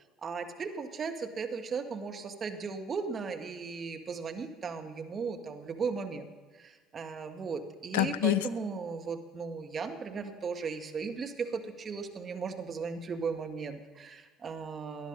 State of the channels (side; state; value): both; normal; correlation 0.53